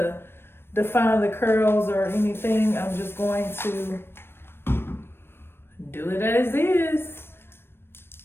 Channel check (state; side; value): late; right; 0.11 ms